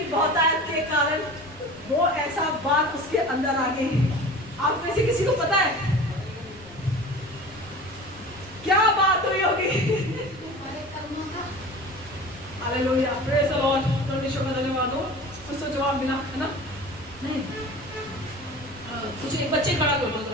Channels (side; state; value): left; noise; rumble, 23 dB below the sound